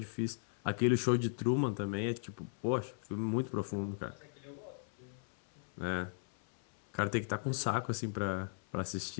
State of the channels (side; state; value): right; silent; 53 dB below the other